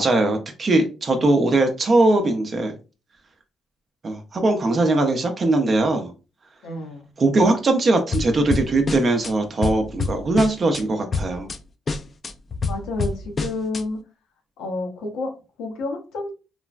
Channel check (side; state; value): both; normal; correlation 0.81